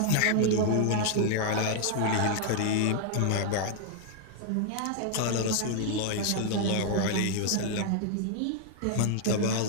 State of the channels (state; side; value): different; both; correlation 0.00